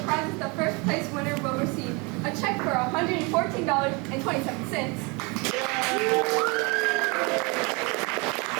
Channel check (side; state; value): left; quieter; 29.1 dB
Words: prizes the first place winner will receive. A check for